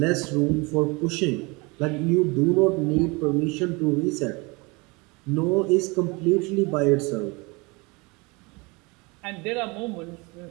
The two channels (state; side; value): quieter; left; 26.9 dB